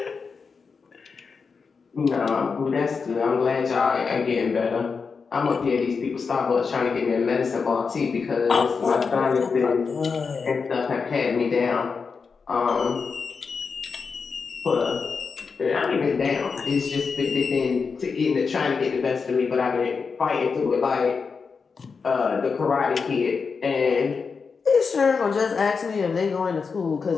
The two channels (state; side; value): quieter; right; 5.2 dB